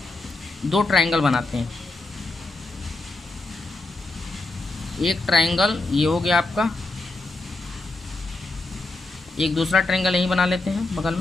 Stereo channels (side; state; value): right; quieter; 3.1 dB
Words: दो ट्रायंगल बनाते हैं। एक ट्रायंगल ये हो गया आपका, एक दूसरा ट्रायंगल यहीं बना लेते हैं बगल